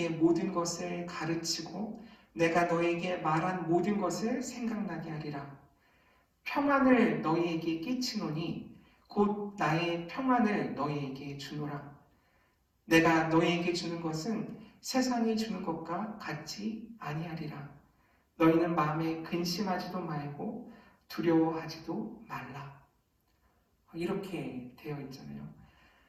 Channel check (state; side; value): identical; both; correlation 1.00